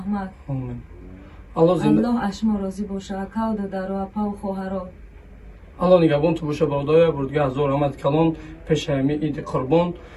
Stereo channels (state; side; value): identical; both; correlation 1.00